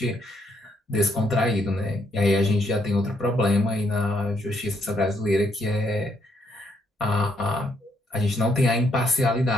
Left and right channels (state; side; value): normal; both; correlation 0.73